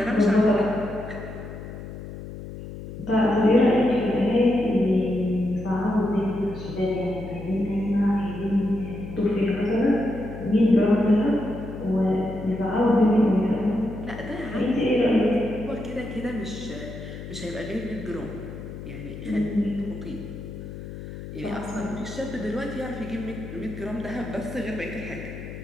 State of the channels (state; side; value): noise; left; hum, 11 dB below the sound